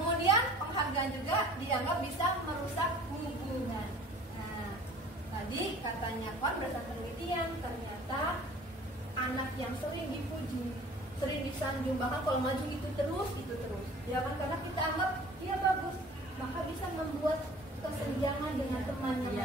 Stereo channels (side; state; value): both; normal; correlation 0.48